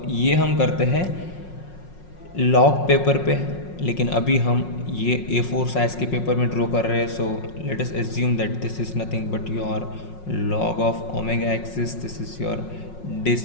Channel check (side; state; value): right; late; 5.5 ms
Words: ये हम करते हैं लॉग पेपर पे, लेकिन अभी हम ये A4 साइज के पेपर में ड्रॉ कर रहे हैं. So let us assume that this is nothing but your log of omega axis, this is your